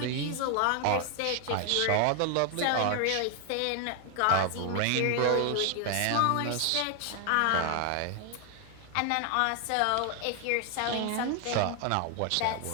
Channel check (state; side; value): different; both; correlation 0.00